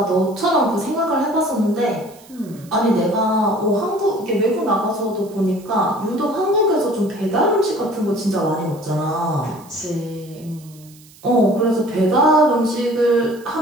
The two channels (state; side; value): noise; right; hiss, 25 dB below the sound